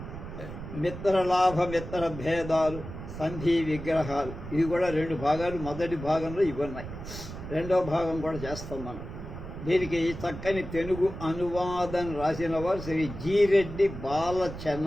మిత్రలాభ మిత్రభేదాలు సంధి విగ్రహాలు ఇవి కూడా 2 భాగాలు. మొదటి భాగంలో ఇవి ఉన్నాయి, రెండో భాగం కూడా చేస్తాం మనం. దీనికి చక్కని తెలుగు అనువాదం రాసిన వారు శ్రీ జి రెడ్డి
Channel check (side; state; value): right; noise; rumble, 10 dB below the sound